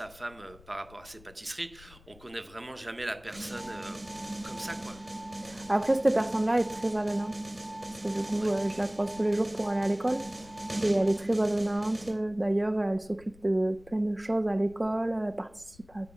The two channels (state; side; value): noise; left; rumble, 24 dB below the sound